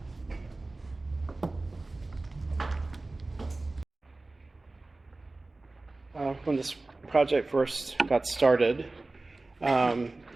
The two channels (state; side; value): quieter; left; 3.2 dB